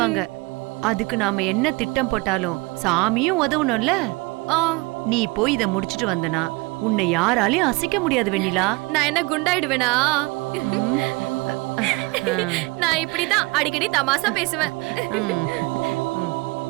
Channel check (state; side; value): quieter; left; 25.3 dB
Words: அதுக்கு நாம என்ன திட்டம் போட்டாலும் சாமியும் உதவணும்ல. நீ போய் இத முடிச்சிட்டு வந்தனா உன்னை யாராலையும் அசைக்க முடியாது வெண்ணிலா. நான் என்ன குண்டாயிடுவேனா? நான் இப்படிதான் அடிக்கடி தமாசா பேசுவேன்.